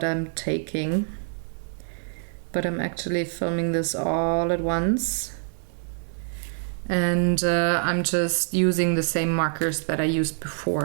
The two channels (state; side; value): silent; left; digital silence